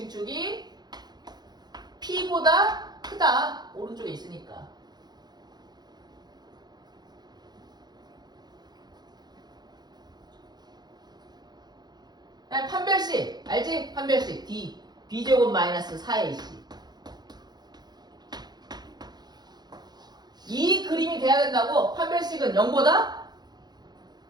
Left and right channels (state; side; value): late; left; 0.20 ms